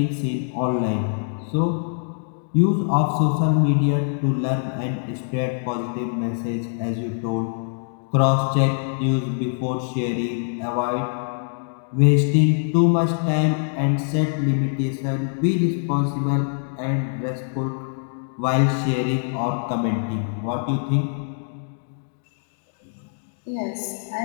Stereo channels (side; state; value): right; silent; digital silence